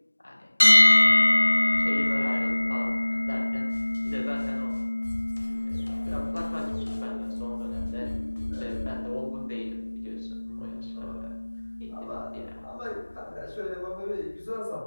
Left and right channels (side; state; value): both; inverted; correlation -1.00